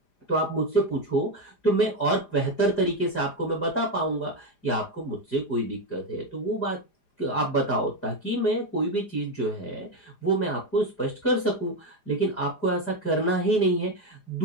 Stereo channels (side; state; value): right; late; 4.9 ms